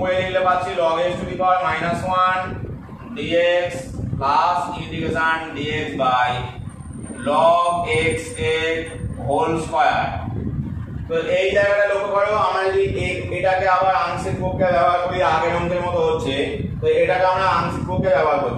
লিখলে পাচ্ছি log x to the power -1 dx plus integration dx by log x এর হোল স্কয়ার। তো এই জায়গাটা লক্ষ্য করো, আমরা যদি এটাকে আবার আংশিক পক্ষে ব্যবহার করি, আগের অঙ্কের মতো হচ্ছে, তো এটাকে আমরা আংশিক পক্ষে ব্যবহার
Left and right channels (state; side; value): identical; both; correlation 1.00